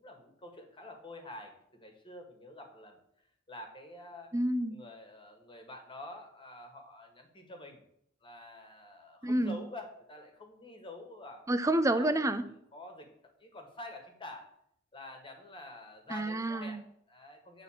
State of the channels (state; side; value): normal; both; correlation 0.69